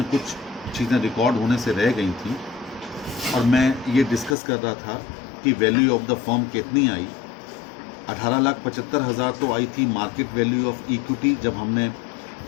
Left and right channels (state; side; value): drops out; right; at 4.4 s